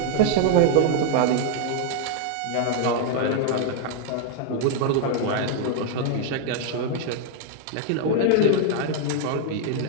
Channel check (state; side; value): different; both; correlation 0.00